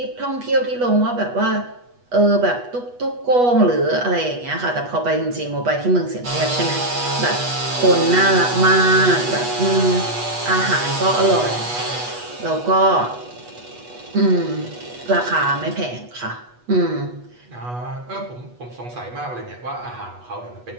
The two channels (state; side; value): late; left; 8.2 ms